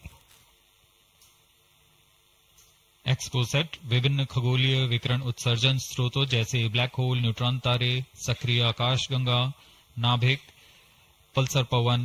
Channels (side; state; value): both; identical; correlation 1.00